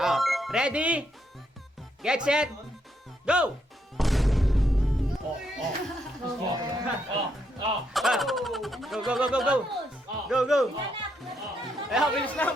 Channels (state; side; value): normal; both; correlation 0.77